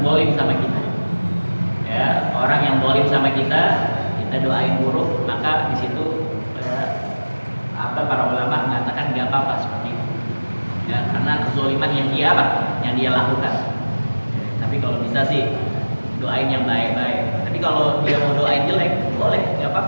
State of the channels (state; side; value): inverted; both; correlation -1.00